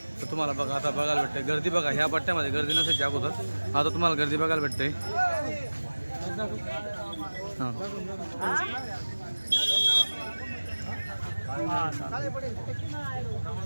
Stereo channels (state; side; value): inverted; both; correlation -1.00